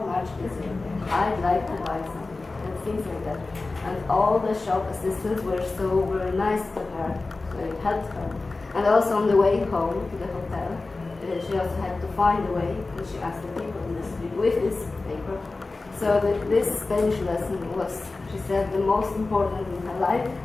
much is it? I'd like to buy something, and things like that. And all the shop assistants were so very nice to her, so it helped her. And also on the way home to the hotel, she also had to find a way, and she asked the people in the street with this paper. So this Spanish lesson was, she said, the most important in her life.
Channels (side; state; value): right; quieter; 3.5 dB